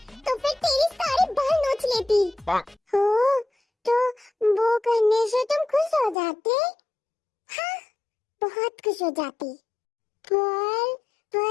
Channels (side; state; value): right; drops out; at 6.2 s